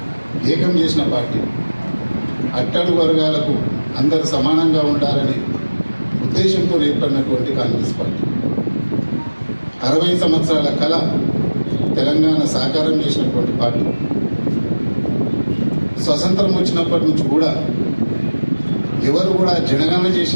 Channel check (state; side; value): inverted; both; correlation -1.00